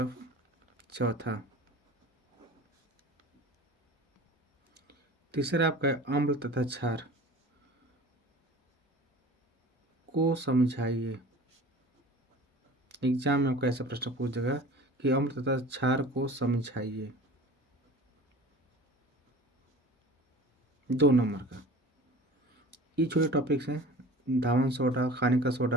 चौथा, तीसरा आपका है अम्ल तथा क्षार को समझाइए। एग्जाम में आपका ऐसा प्रश्न पूछेगा कि अम्ल तथा क्षार को समझाइए, 2 नंबर का। ये छोटे टॉपिक्स हैं, धावन सोडा, खाने का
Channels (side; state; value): both; normal; correlation 0.41